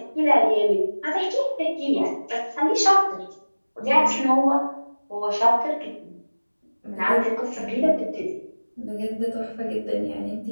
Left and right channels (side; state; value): both; inverted; correlation -1.00